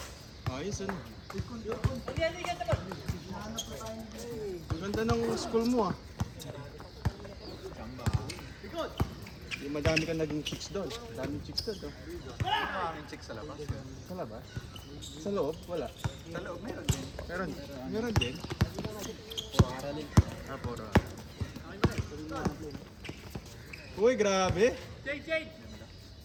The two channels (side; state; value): both; identical; correlation 1.00